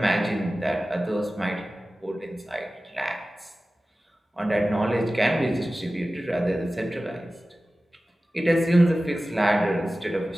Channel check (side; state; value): both; normal; correlation 0.96